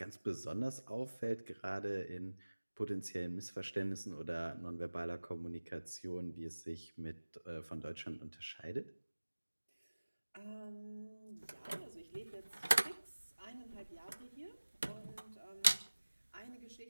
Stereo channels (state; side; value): inverted; both; correlation -1.00